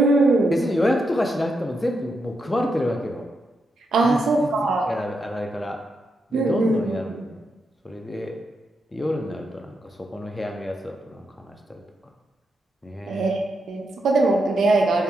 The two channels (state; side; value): normal; both; correlation 0.83